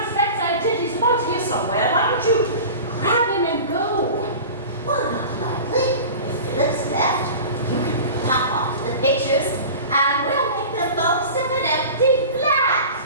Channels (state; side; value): inverted; both; correlation -0.36